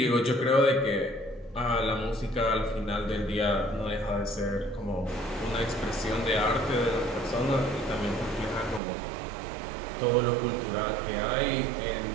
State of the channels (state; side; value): drops out; left; at 8.8 s